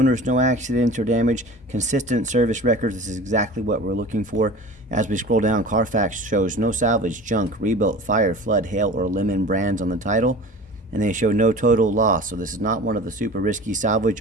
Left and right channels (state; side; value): normal; both; correlation 0.38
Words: no accidents or damage, consistent service records. This is exactly what we're looking for. As we scroll down, Carfax shows no salvage, junk, rebuilt, fire, flood, hail, or lemon brands on the title. And they show no total loss. So this is not one of the super risky